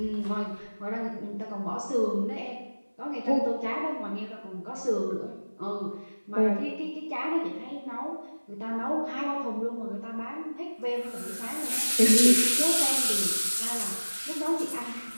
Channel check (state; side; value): inverted; both; correlation -1.00